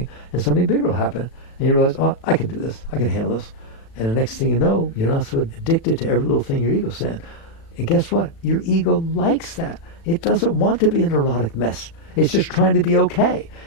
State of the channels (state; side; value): late; right; 36 ms